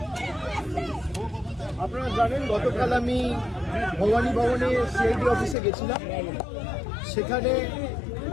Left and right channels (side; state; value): right; drops out; at 5.6 s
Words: আপনারা জানেন গতকাল আমি ভবানী ভবনে সিআইডি অফিসে গেছিলাম। সেখানে